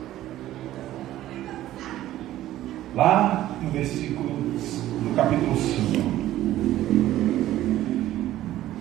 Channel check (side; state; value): left; quieter; 14.0 dB